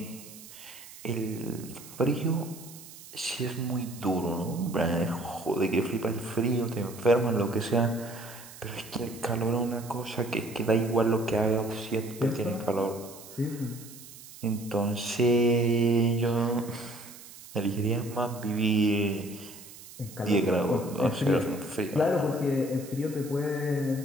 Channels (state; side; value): noise; right; hiss, 17 dB below the sound